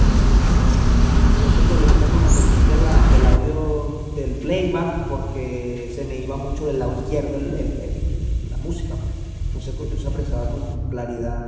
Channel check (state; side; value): identical; both; correlation 1.00